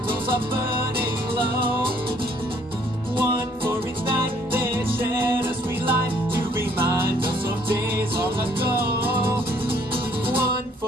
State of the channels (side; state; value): both; normal; correlation 0.63